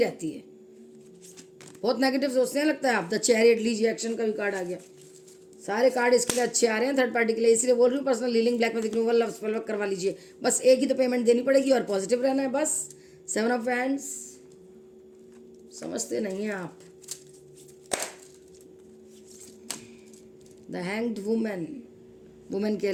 है, बहुत नेगेटिव सोचते हैं लगता है आप। द चैरियट, लीजिए एक्शन का भी कार्ड आ गया। सारे कार्ड इसके लिए अच्छे आ रहे हैं थर्ड पार्टी के लिए, इसलिए बोल रही हूँ personal healing, black magic removal, love spell work करवा लीजिए। बस एक ही तो पेमेंट देनी पड़ेगी और पॉजिटिव रहना है बस। सेवन ऑफ हैंड्स, समझते नहीं हैं आप। द हैंग्ड वुमेन, वुमेन कह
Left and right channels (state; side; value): identical; both; correlation 1.00